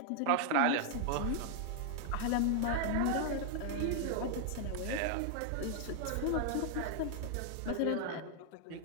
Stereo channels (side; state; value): both; different; correlation 0.00